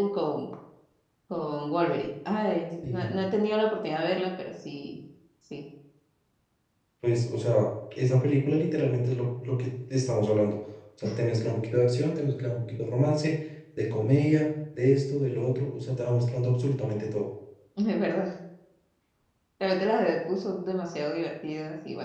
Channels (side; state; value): both; identical; correlation 1.00